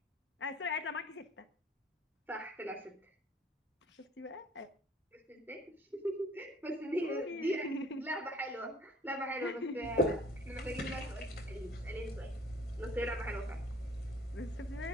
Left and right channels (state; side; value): normal; both; correlation 0.53